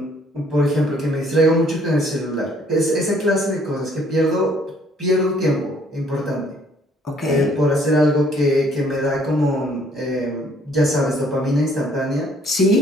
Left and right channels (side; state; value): both; normal; correlation 0.62